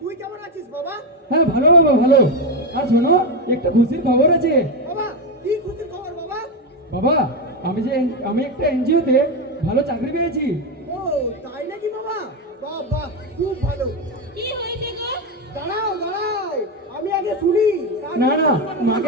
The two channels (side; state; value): both; normal; correlation 0.10